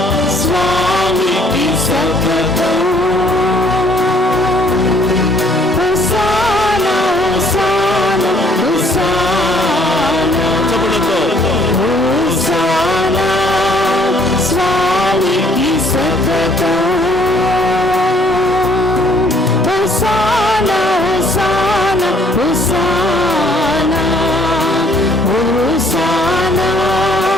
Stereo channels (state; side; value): normal; both; correlation 0.61